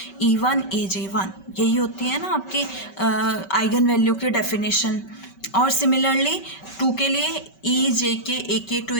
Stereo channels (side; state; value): right; late; 5.2 ms